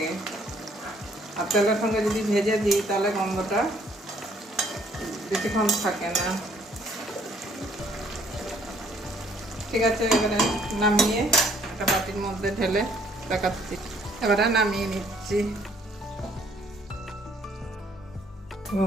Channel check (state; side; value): normal; both; correlation 0.63